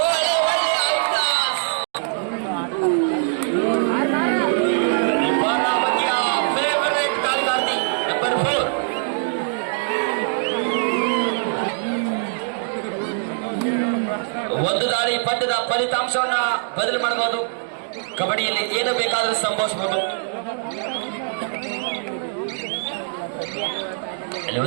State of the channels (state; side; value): silent; left; digital silence